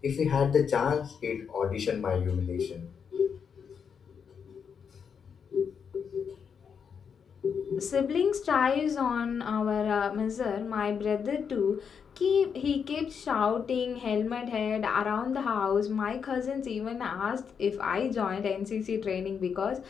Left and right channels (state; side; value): quieter; right; 6.7 dB